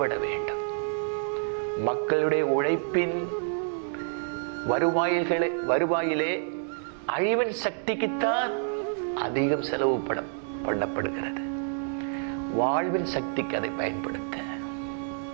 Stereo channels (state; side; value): silent; left; digital silence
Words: வேண்டும். மக்களுடைய உழைப்பின் வருவாயிலே அழிவின் சக்திக்குத்தான் அதிகம் செலவு பண்ணப்படுகிறது. வாழ்வின் சக்திக்கு அதை பயன்படுத்த